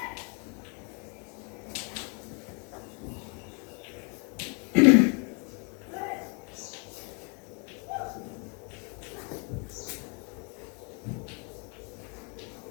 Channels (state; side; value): quieter; right; 33.9 dB